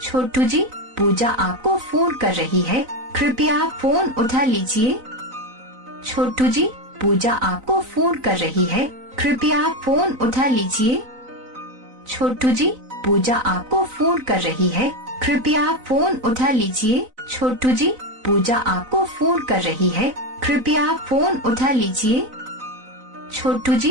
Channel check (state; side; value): late; left; 4.0 ms